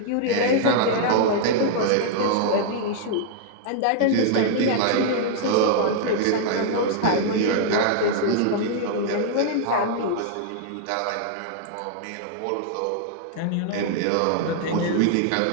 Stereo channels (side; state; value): both; different; correlation -0.01